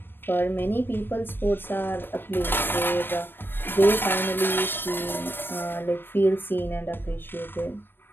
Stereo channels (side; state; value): right; late; 0.097 ms